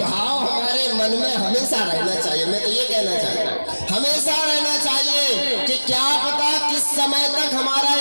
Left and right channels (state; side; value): inverted; both; correlation -1.00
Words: हमारे मन में हमेशा रहना चाहिए। मैं तो ये कहना चाहता हूँ हमेशा रहना चाहिए कि क्या पता किस समय तक हमारा